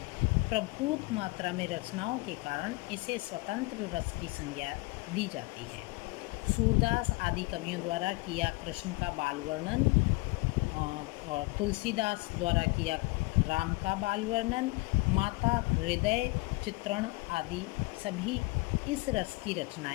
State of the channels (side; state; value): right; quieter; 24.2 dB